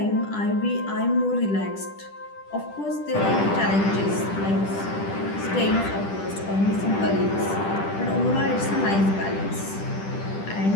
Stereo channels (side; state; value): right; late; 10 ms